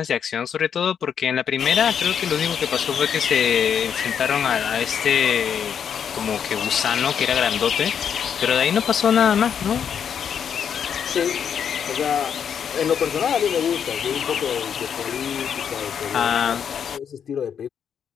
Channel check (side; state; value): right; quieter; 7.9 dB